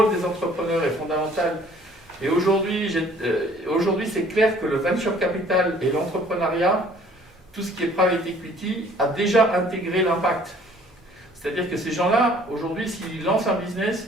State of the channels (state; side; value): normal; both; correlation 0.56